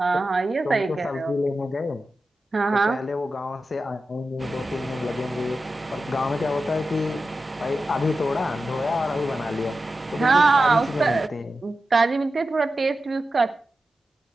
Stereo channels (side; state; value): both; normal; correlation 0.92